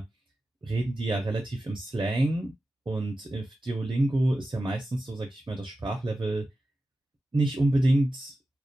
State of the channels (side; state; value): both; normal; correlation 0.93